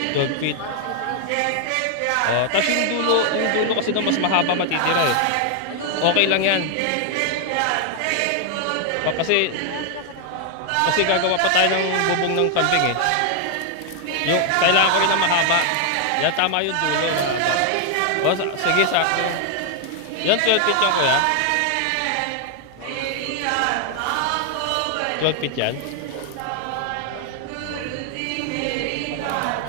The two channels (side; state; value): both; different; correlation 0.00